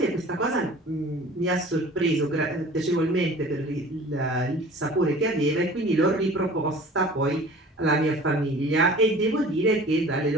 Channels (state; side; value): normal; both; correlation 0.44